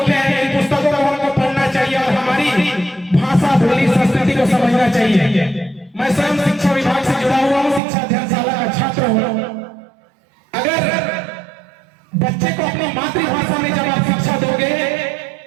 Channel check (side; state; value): left; drops out; at 7.8 s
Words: हैं। इन पुस्तकों को हमको पढ़ना चाहिए और हमारी भाषा, बोली, संस्कृति को समझना चाहिए। मैं स्वयं शिक्षा विभाग से जुड़ा हुआ हूँ, शिक्षा अध्ययनशाला का छात्र हूँ। अगर बच्चे को अपनी मातृभाषा में जब आप शिक्षा दोगे